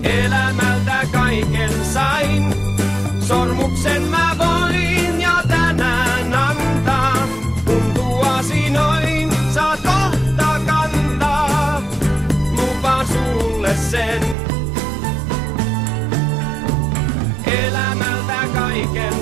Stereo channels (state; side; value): drops out; left; at 14.4 s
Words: Elämältä kaiken sain, sormuksen mä voin ja tänään antaa. Kun tuosi noin, saat kohta kantaa, lupaan sulle sen. Elämältä